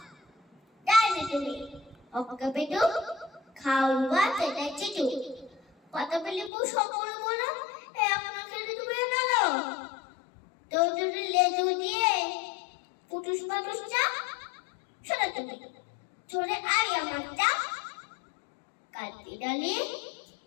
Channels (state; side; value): drops out; right; at 6.5 s